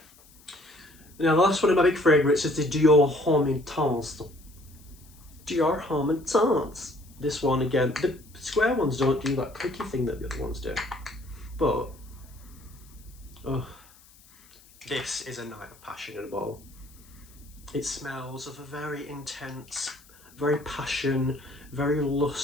Now the last one of my big favourites is the Dior Homme Intense. Dior Homme Intense. This one again, the square ones don't do that clicky thing that the other ones do. But, oh, this is a night of passion at a ball. It smells of a very intense, very passion, very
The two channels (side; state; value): left; noise; hiss, 26 dB below the sound